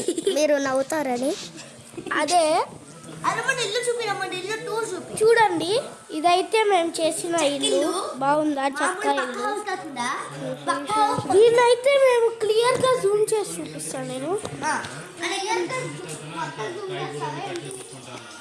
మీరు నవ్వుతారని అదే ఇల్లు చూపి చూడండి. ఇదైతే మేము చేసిన ఇల్లు బాగుందా, చక్క ఇల్లు. దీన్నైతే మేము క్లియర్గా జూమ్ చేసి చూపిస్తాను నేను.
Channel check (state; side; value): identical; both; correlation 1.00